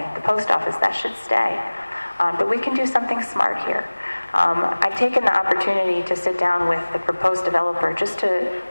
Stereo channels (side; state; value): both; inverted; correlation -1.00